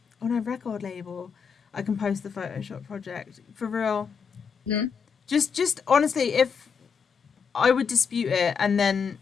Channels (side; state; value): right; quieter; 6.2 dB